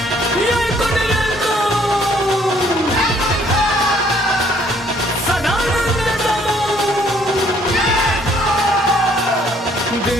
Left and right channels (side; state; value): both; normal; correlation 0.63